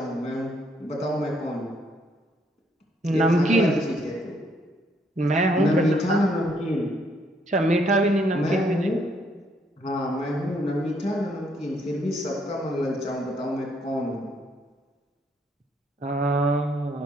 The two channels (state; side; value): normal; both; correlation 0.70